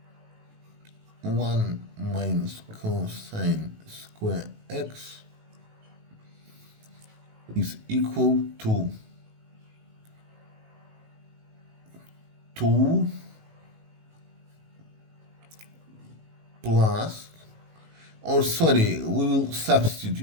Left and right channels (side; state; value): left; late; 18 ms